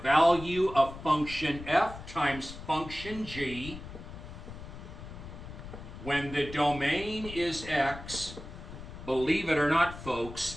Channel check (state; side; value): noise; left; rumble, 12 dB below the sound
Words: of function f times function g when the domain is x, believe it or not,